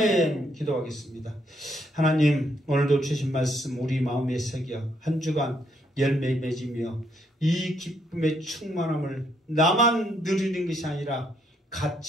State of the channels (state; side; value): normal; both; correlation 0.73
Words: 기도하겠습니다. 하나님 오늘도 주신 말씀 우리 마음에 새겨 한 주간 열매 맺으며 이 기쁨의 충만함을 나만 누리는 것이 아니라